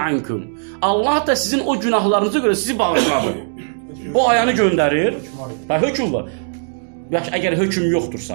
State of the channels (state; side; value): silent; left; digital silence